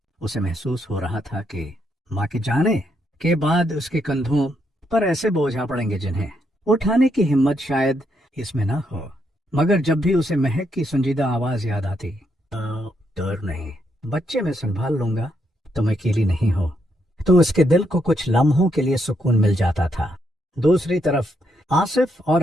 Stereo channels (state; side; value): normal; both; correlation 0.77